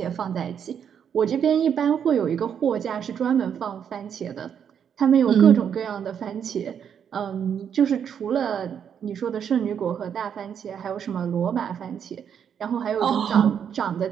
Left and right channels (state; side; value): quieter; left; 8.1 dB